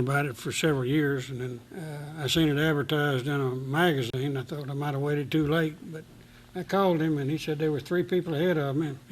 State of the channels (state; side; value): identical; both; correlation 1.00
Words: it for several years, and then I seen it advertised in a magazine. I thought I might have waited too late, but I called him, and he said there were 3 people ahead of him,